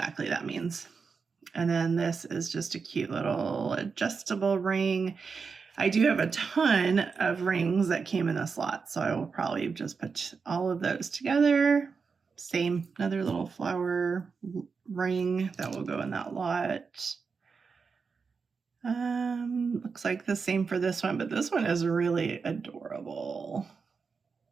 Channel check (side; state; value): left; quieter; 5.2 dB